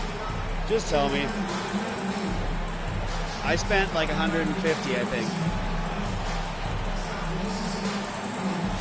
Just tell me. I spent like 150, I think.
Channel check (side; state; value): both; identical; correlation 1.00